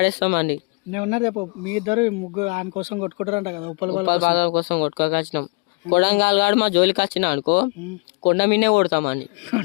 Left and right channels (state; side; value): quieter; right; 33.3 dB